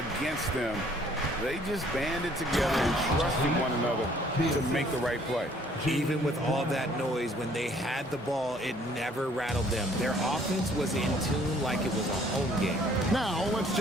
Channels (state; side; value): normal; both; correlation 0.60